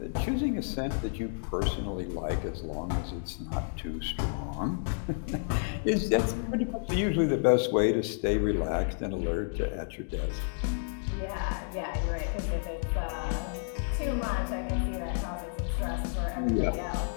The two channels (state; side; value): silent; right; digital silence